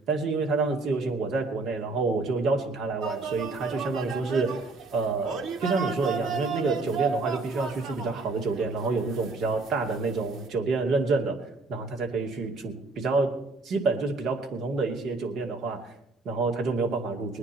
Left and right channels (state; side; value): quieter; left; 3.5 dB